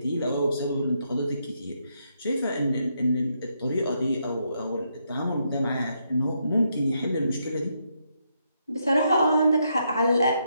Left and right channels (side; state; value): both; inverted; correlation -0.78